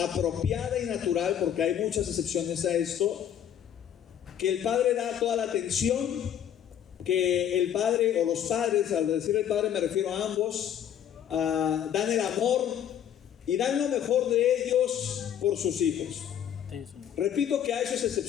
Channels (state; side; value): quieter; right; 9.7 dB